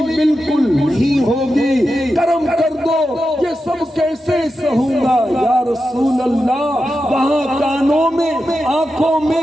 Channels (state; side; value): normal; both; correlation 0.90